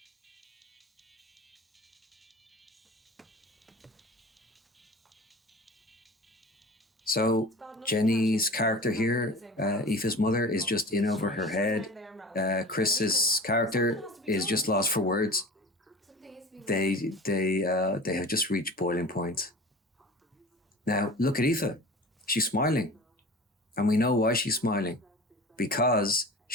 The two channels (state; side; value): normal; both; correlation 0.37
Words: So Jenny's character here, Aoife's mother, is just in over her head. Chris's character is just lost for words. They have just reached boiling point. Now look at Aoife. She's smiling, and we know why she's smiling, because